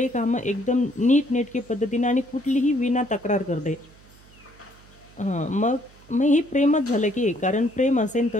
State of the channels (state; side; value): noise; right; hum, 25 dB below the sound